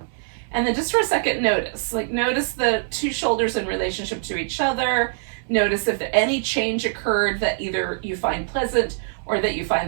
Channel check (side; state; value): left; silent; digital silence